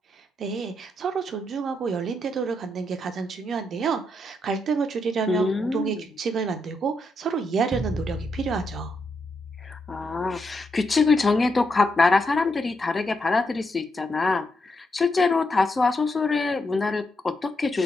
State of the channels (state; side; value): normal; both; correlation 0.81